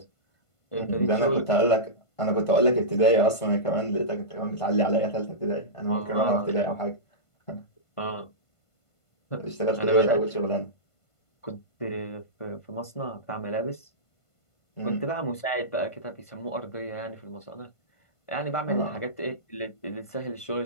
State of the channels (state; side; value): late; right; 1.5 ms